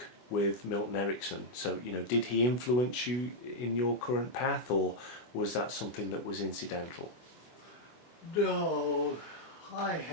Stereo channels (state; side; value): late; right; 24 ms